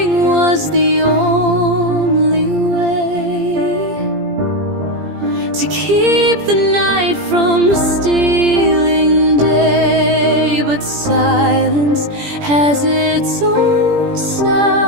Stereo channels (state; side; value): late; left; 17 ms